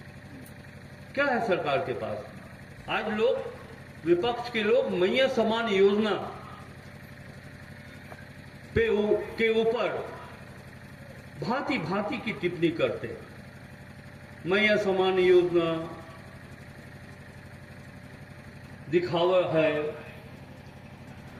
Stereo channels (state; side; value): identical; both; correlation 1.00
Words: क्या है सरकार के पास? आज लोग, विपक्ष के लोग मैया समान योजना के ऊपर भांति भांति की टिप्पणी करते हैं। मैया समान योजना दिखावा है,